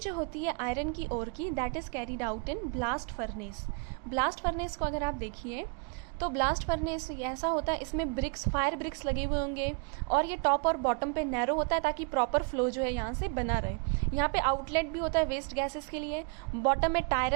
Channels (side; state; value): left; quieter; 36.4 dB